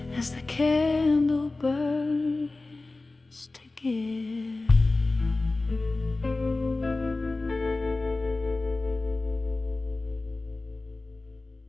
as the candle burns to give.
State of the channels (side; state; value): right; quieter; 3.2 dB